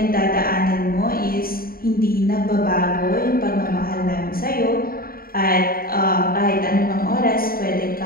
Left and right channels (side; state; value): right; late; 0.43 ms